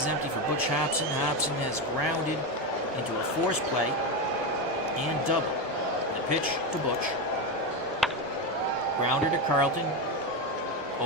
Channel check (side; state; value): both; normal; correlation 0.13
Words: empty for Butch Hobson. Hobson has grounded into a force play and double. The pitch to Butch. Grounder to Carlton.